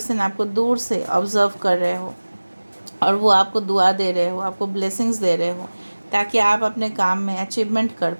आपको दूर से ऑब्ज़र्व कर रहे हो और वो आपको दुआ दे रहे हो, आपको ब्लेसिंग्स दे रहे हो ताकि आप अपने काम में अचीवमेंट कर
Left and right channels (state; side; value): inverted; both; correlation -1.00